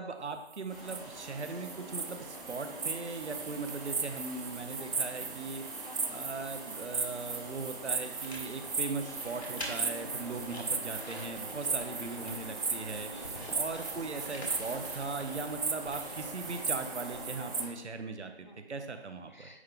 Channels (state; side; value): quieter; left; 3.6 dB